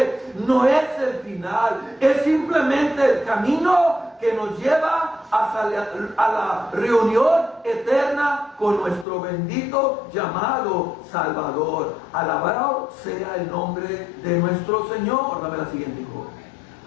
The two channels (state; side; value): drops out; right; at 9.1 s